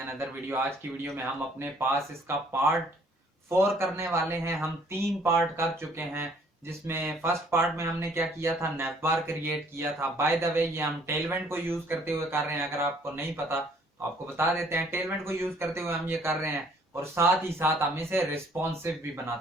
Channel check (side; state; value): both; normal; correlation 0.60